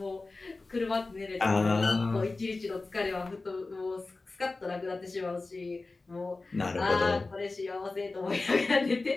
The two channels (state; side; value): quieter; right; 3.5 dB